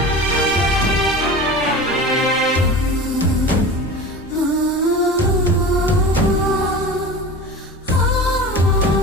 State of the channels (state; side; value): normal; both; correlation 0.33